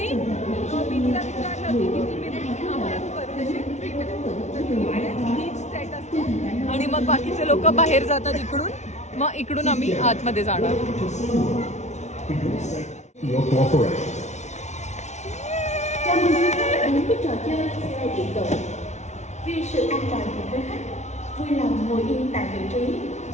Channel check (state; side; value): late; right; 0.33 ms